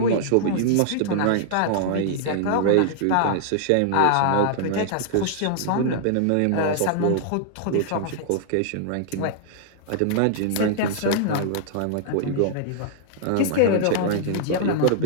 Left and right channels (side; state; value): both; different; correlation -0.01